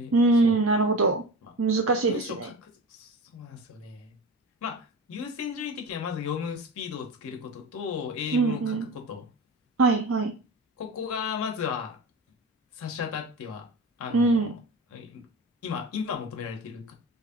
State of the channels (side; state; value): both; normal; correlation 0.31